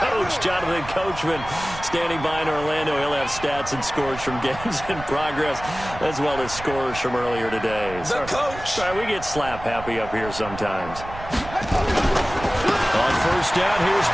Jonathan Coachman, standing by in Orlando. He'll have stats and scores from games in progress, as well as scores from earlier today. The coach. Sorry, we get slap happy up here sometimes. On first down, here's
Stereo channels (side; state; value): right; noise; rumble, 13 dB below the sound